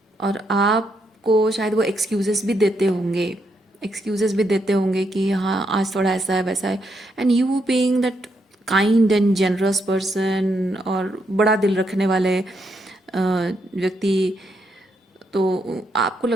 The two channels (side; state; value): both; normal; correlation 0.78